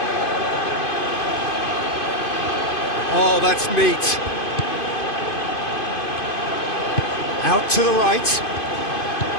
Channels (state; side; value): late; right; 2.5 ms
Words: Oh, that's neat. Out to the right.